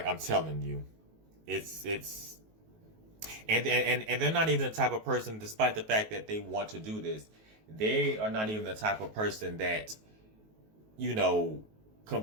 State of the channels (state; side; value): late; left; 19 ms